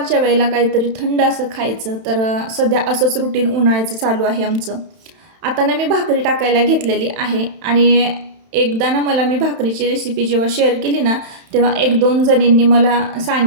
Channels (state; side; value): late; left; 31 ms